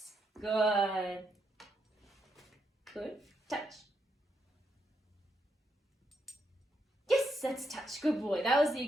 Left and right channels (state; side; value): normal; both; correlation 0.80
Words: Good. Touch. Yes, that's touch. Good boy. That was the